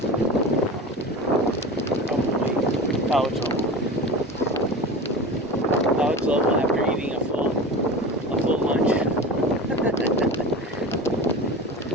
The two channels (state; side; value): normal; both; correlation 0.31